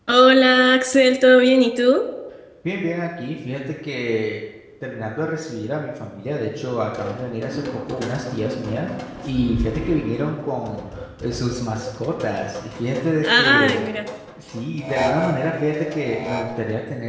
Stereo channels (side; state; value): both; identical; correlation 1.00